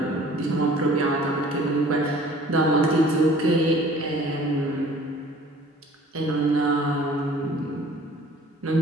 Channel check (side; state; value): both; normal; correlation 0.51